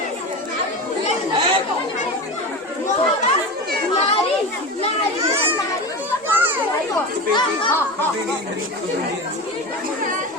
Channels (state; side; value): normal; both; correlation 0.26